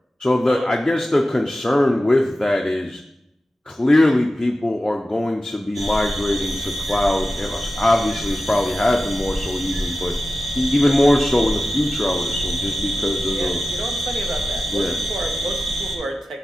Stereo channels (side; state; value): both; normal; correlation 0.94